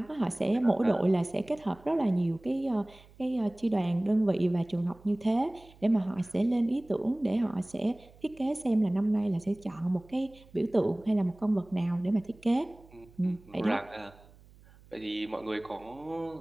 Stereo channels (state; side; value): noise; right; hum, 25 dB below the sound